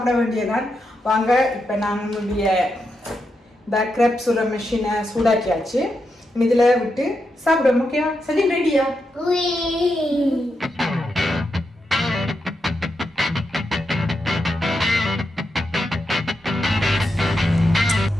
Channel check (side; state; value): both; normal; correlation 0.85